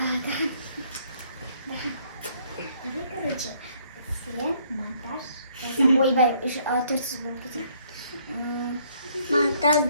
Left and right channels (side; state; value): both; inverted; correlation -0.65